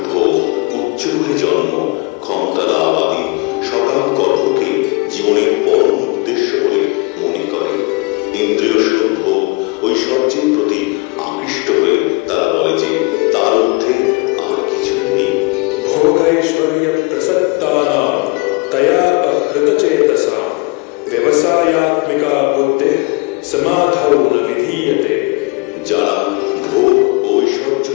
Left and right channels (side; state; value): right; quieter; 27.7 dB